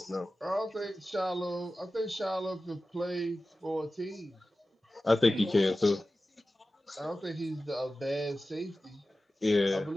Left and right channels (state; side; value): normal; both; correlation 0.95